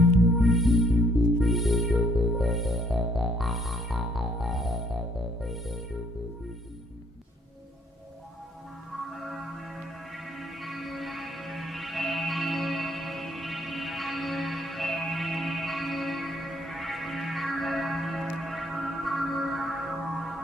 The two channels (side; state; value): both; normal; correlation 0.65